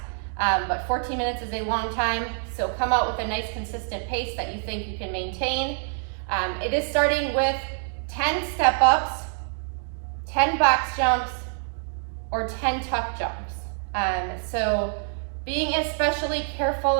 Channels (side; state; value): left; silent; 61 dB below the other